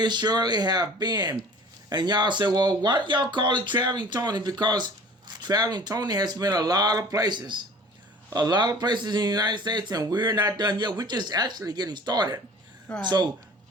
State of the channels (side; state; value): both; normal; correlation 0.45